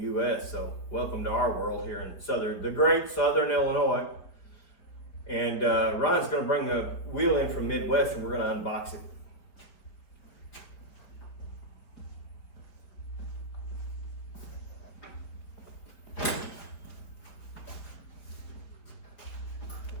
U.S. So welcome to our world here in the great Southern Illinois. And Ryan's going to bring the wheel in from Midwest, and we're going to unbox it.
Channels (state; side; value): late; right; 5.0 ms